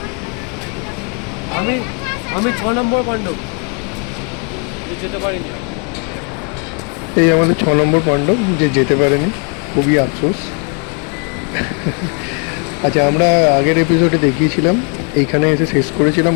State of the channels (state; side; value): quieter; right; 37.4 dB